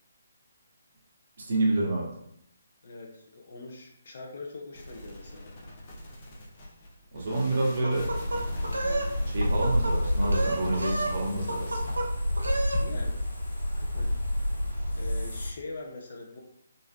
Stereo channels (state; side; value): inverted; both; correlation -0.90